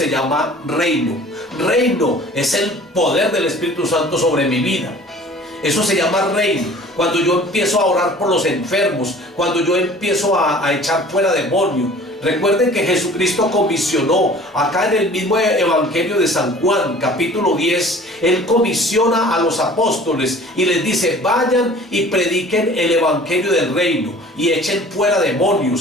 llama reino. Reino es el poder del Espíritu Santo sobre mi vida. Eso se llama reino. Cuando yo empiezo a orar por los enfermos, cuando yo empiezo a echar fuera demonios. Recuerden que Jesucristo comisionó, acá en el mismo Evangelio de San Juan, capítulo 10, Él comisiona a los apóstoles y les dice: vayan y prediquen el Evangelio del reino, y echen fuera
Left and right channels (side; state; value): both; normal; correlation 0.47